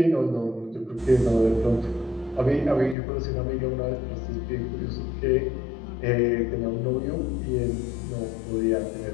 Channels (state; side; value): drops out; right; at 3.0 s